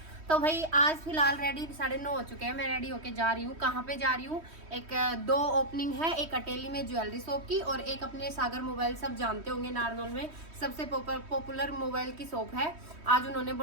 तो भाई आज फिलहाल रेडी 9:30 हो चुके हैं। मैं रेडी होके जा रही हूँ। कहाँ पे जा रही हूँ? एक दो ओपनिंग है, एक अटेली में ज्वेलरी शॉप की और एक अपने सागर मोबाइल, सब जानते होंगे नारनौल में सबसे पॉपुलर मोबाइल की शॉप है। आज उन्होंने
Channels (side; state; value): left; late; 3.1 ms